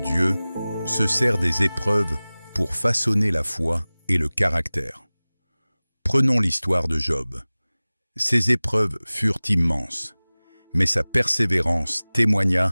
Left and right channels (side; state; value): both; inverted; correlation -0.99